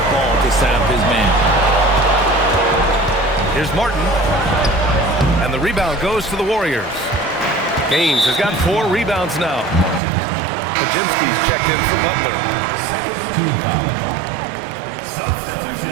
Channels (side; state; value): left; drops out; at 10.0 s